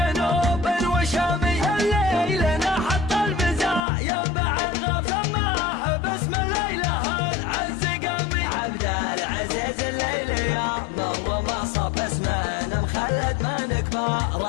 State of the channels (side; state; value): right; drops out; at 3.8 s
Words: وشامي الليل نحط البزاع ينبع الغف سماه باسم الليله العز قامي عبد العزيز الليل يا مر ما صب اسمنا مخلد من